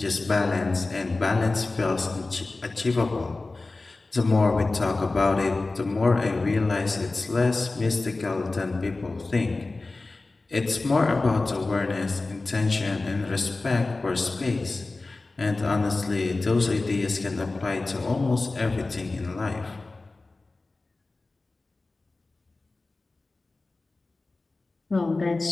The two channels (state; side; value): quieter; right; 3.4 dB